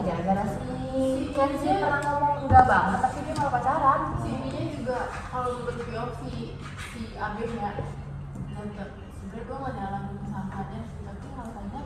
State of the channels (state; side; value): identical; both; correlation 1.00